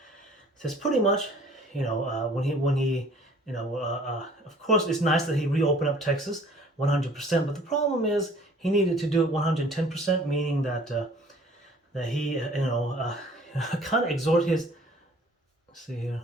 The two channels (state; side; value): normal; both; correlation 0.53